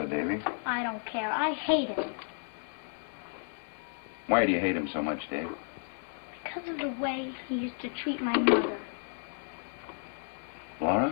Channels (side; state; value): right; silent; digital silence